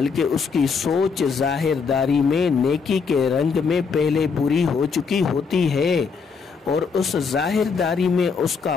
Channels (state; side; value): quieter; right; 5.3 dB